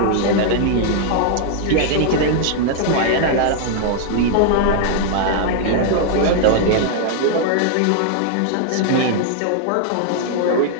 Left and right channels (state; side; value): different; both; correlation -0.01